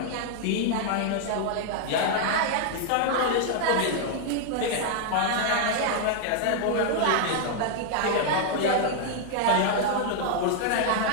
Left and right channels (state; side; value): different; both; correlation 0.00